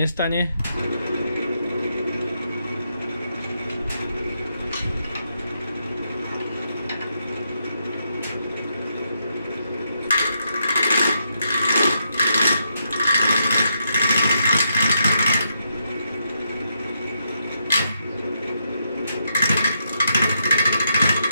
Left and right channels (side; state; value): both; inverted; correlation -0.80